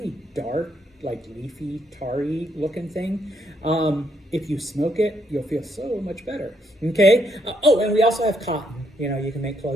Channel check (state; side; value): normal; both; correlation 0.75